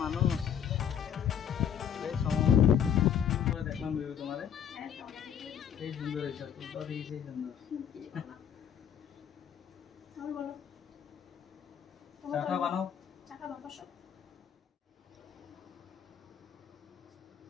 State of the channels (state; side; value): quieter; right; 8.8 dB